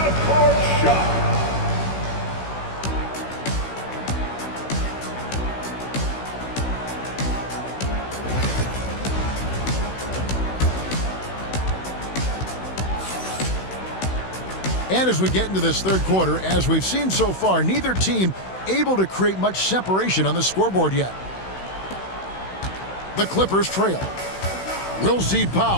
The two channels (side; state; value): right; late; 16 ms